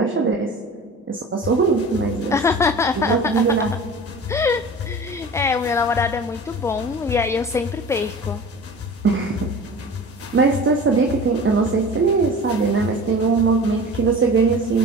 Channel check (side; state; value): both; normal; correlation 0.38